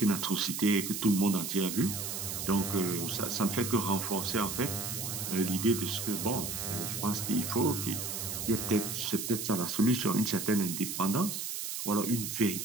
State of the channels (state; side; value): noise; right; hiss, 4 dB below the sound